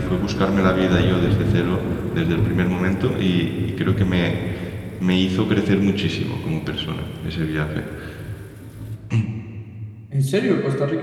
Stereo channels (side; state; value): both; identical; correlation 1.00